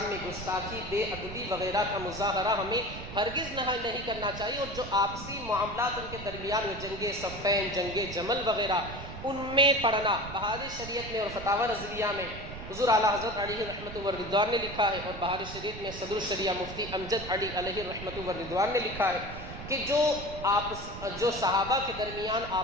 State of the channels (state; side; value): noise; right; rumble, 11 dB below the sound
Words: میں گستاخی، بے ادبی وغیرہ کا مظاہرہ ہمیں ہرگز نہیں کرنا چاہیے، اور جو آپسی معاملات ان کے درمیان میں جنگ صفین، جنگ جمل وغیرہ، ان میں پڑھنا، بہار شریعت میں اور فتاوی رضویہ میں حضور اعلیٰ حضرت علیہ رحمۃ و رضوان نے لکھا ہے، اور بہار شریعت میں صدر الشریعہ مفتی امجد علی علیہ رحمۃ و رضوان نے لکھا ہے کہ جو صحابہ کے درمیان